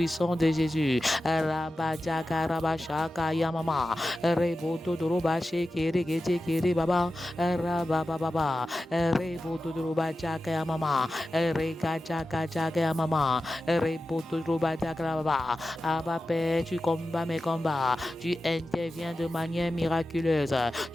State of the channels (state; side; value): normal; both; correlation 0.93